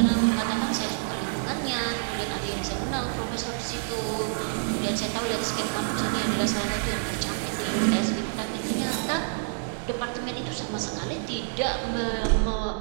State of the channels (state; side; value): silent; left; digital silence